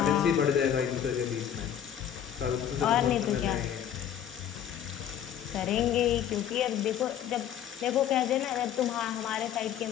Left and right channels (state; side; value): quieter; right; 9.9 dB